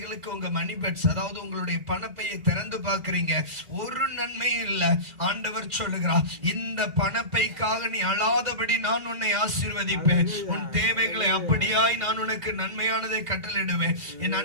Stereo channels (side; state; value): left; late; 2.1 ms